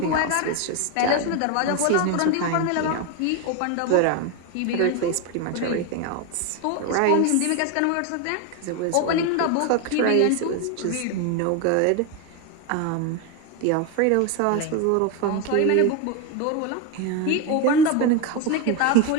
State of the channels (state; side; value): different; both; correlation 0.02